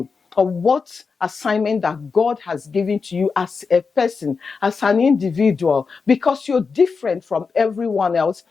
or what assignment that God has given to you as a person, as an individual, because you're different from everyone else.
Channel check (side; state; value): right; quieter; 5.0 dB